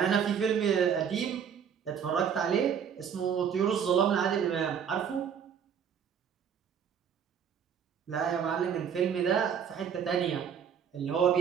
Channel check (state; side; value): quieter; left; 7.7 dB